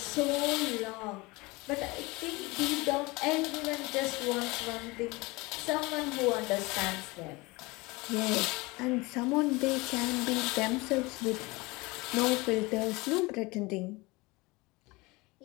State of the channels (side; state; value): right; quieter; 23.6 dB